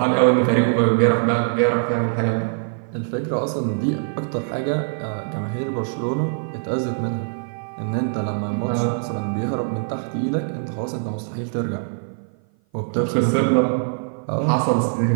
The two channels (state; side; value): silent; left; 56 dB below the other